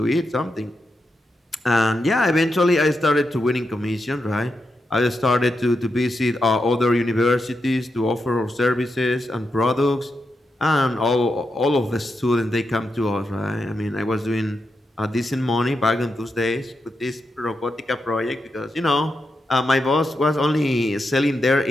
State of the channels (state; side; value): normal; both; correlation 0.86